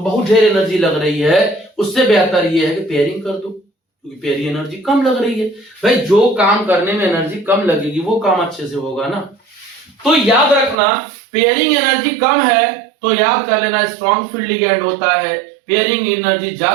बहुत ढेर एनर्जी लग रही है, उससे बेहतर ये है कि पेयरिंग कर दो, क्योंकि पेयरिंग एनर्जी कम लग रही है। भाई जो काम करने में एनर्जी कम लगेगी वो काम अच्छे से होगा ना। तो याद रखना, पेयरिंग एनर्जी कम है तो याद कर लेना स्ट्रॉन्ग फील्ड लिगेंड होता है, पेयरिंग एनर्जी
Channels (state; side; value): drops out; left; at 10.8 s